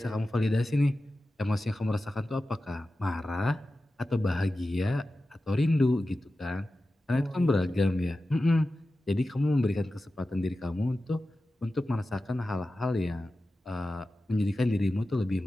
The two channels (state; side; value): normal; both; correlation 0.94